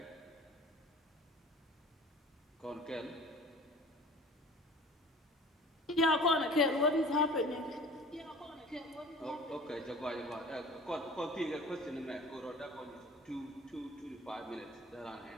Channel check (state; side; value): normal; both; correlation 0.45